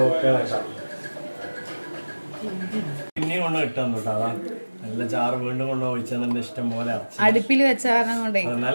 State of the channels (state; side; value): inverted; both; correlation -1.00